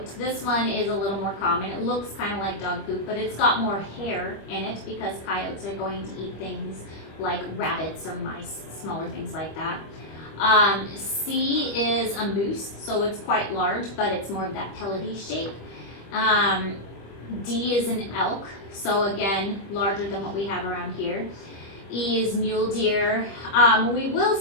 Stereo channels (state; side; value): late; right; 25 ms